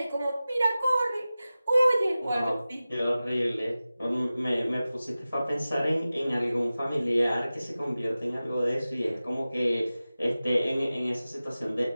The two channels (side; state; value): both; inverted; correlation -0.96